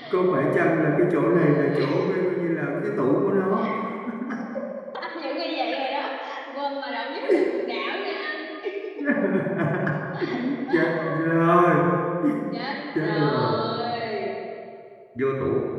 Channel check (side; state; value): both; identical; correlation 1.00